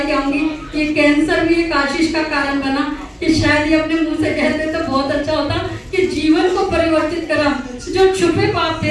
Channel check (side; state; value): both; identical; correlation 1.00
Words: क्या होगी, ये कैंसर भी एक आशीष का कारण बना कि शायद ये अपने मुंह से कहते तो बहुत अच्छा होता कि जीवन को परिवर्तित करा। जो छुपे पाप